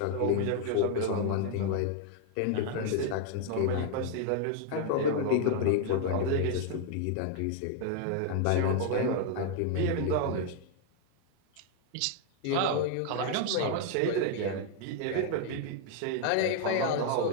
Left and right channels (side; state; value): both; different; correlation 0.00